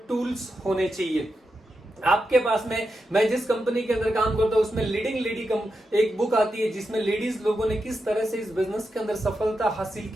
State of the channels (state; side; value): normal; both; correlation 0.87